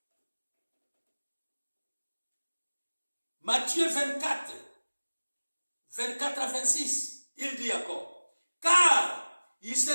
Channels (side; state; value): both; inverted; correlation -1.00